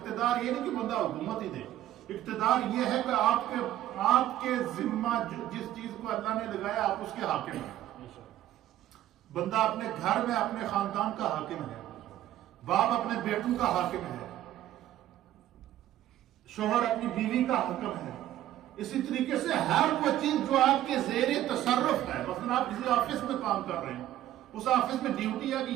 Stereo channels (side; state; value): left; quieter; 13.2 dB